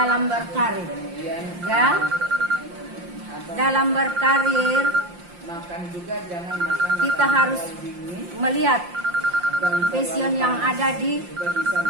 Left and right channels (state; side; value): late; left; 5.7 ms